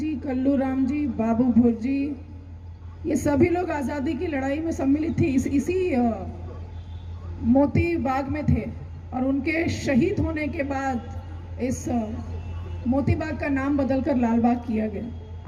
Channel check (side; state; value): both; identical; correlation 1.00